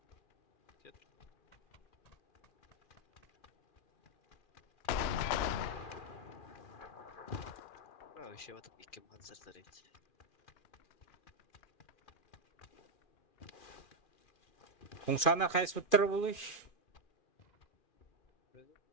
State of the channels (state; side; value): late; right; 2.4 ms